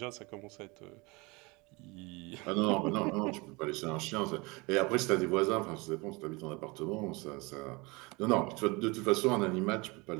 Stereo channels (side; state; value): left; quieter; 26.0 dB